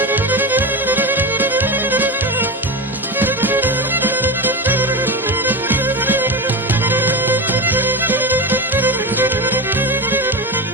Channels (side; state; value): both; normal; correlation 0.19